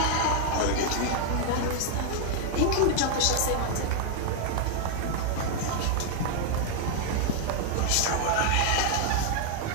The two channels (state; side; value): different; both; correlation 0.00